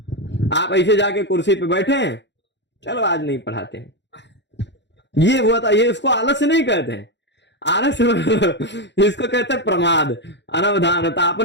आप ऐसे जाके कुर्सी पे बैठे हैं, चलो आज नहीं पढ़ाते हैं, ये हुआ था, ये इसको आलस्य नहीं कहते हैं, आलस्य इसको कहते हैं प्रमाद, अनवधानता,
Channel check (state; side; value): late; right; 0.52 ms